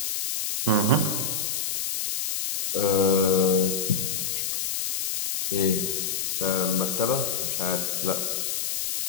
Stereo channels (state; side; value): noise; left; hiss, 1 dB below the sound